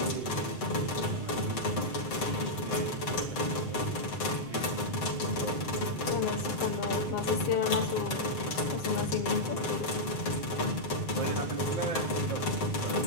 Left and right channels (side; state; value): right; late; 7.7 ms